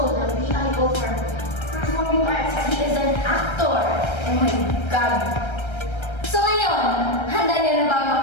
the PIO for Performing Arts. He is an actor. Oh my God! So ngayon, handa niyo na ba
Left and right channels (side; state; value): right; late; 1.3 ms